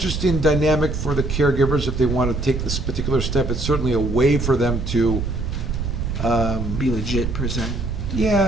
dynamic for the caregivers if they want to take this particular step. It's certainly a way for them to Be legit per se. yeah,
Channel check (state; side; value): noise; right; rumble, 3 dB below the sound